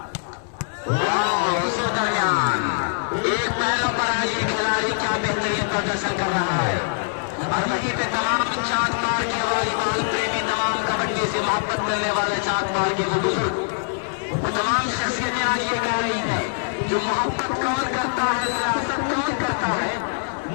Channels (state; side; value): silent; right; digital silence